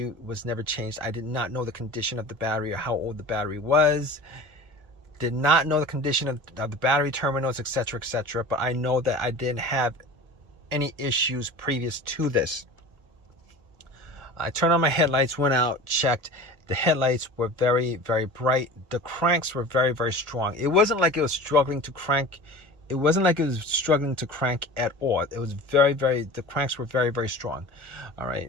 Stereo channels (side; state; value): left; late; 1.4 ms